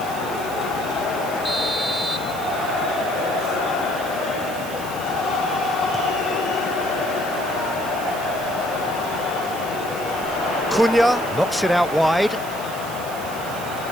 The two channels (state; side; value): noise; right; hiss, 14 dB below the sound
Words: Cunha knocks it out wide.